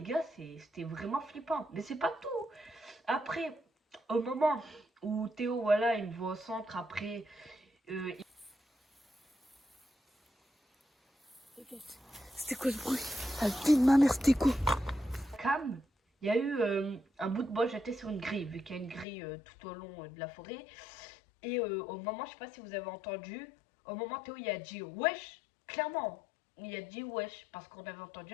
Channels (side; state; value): right; drops out; at 19.1 s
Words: gars, c'était vraiment flippant. Mais c'est pas tout. Après, au moment où Théo, voilà, il me voit au centre, après, il... C'était quoi ce bruit? Ah, vie de ma mère, c'était quoi? Cam, il y a eu un bout de bois jeté sur une grille, vu qu'il y a une grille tout au long de la forêt. Et au moment, je sais pas si vous avez entendu, au moment Théo il a dit wesh, clairement, il a dit wesh, parce qu'on avait